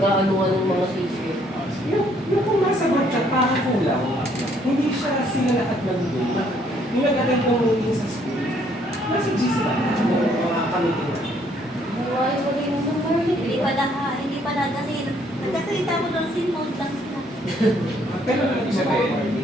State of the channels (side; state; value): both; normal; correlation 0.66